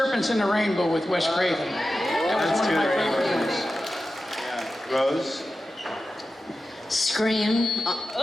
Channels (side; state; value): both; normal; correlation 0.93